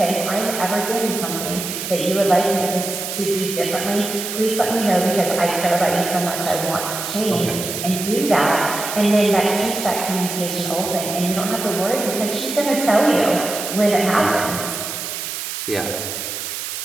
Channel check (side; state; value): right; noise; hiss, 5 dB below the sound